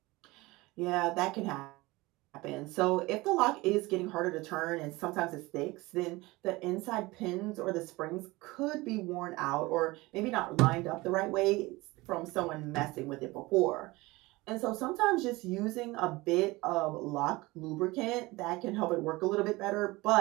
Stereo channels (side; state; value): left; quieter; 21.4 dB